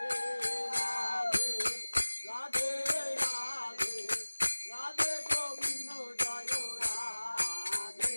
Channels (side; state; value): both; inverted; correlation -1.00